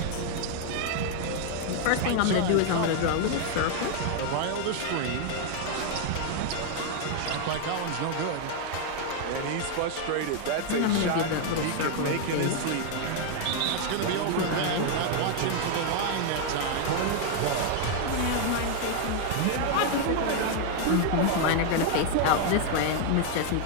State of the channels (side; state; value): both; different; correlation 0.00